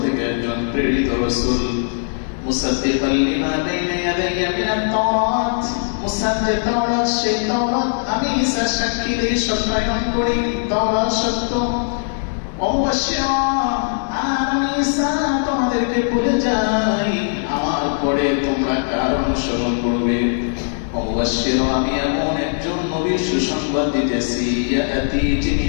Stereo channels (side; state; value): right; silent; digital silence